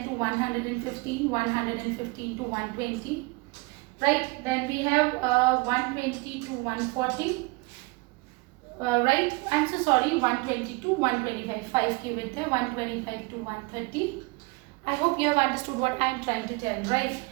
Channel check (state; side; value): quieter; left; 26.3 dB